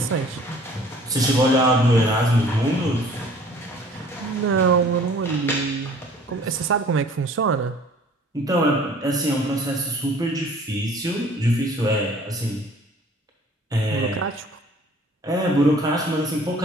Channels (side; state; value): both; normal; correlation 0.52